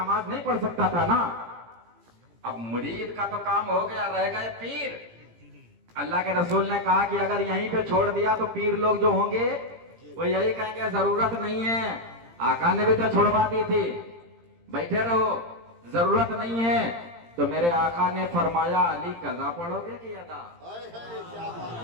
नहीं पढ़ सकता था ना। अब मुरीद का तो काम हो गया, रह गए पीर। अल्लाह के रसूल ने कहा कि अगर यहीं पे छोड़ दिया तो पीर लोग जो होंगे वो यही कहेंगे जरूरत नहीं है, आका ने भी तो छुड़वा दी थी, बैठे रहो, जरूरत नहीं है। तो मेरे आका ने फरमाया, अली कज़ा पढ़ोगे कि अदा, क्या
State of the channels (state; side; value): late; left; 17 ms